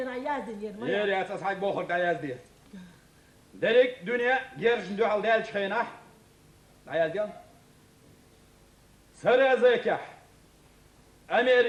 يازن يرمي يري أساس حق بوخر داياز دي دريك دنيا جيرش ندو على دال شخينح عيادين سرى زيكح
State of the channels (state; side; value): identical; both; correlation 1.00